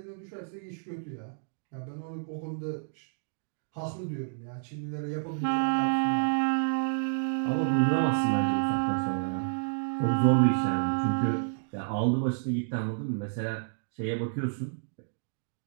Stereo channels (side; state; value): left; silent; digital silence